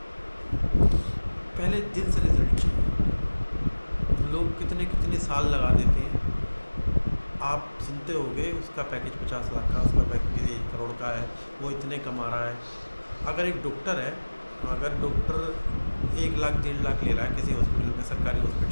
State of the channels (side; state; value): both; inverted; correlation -1.00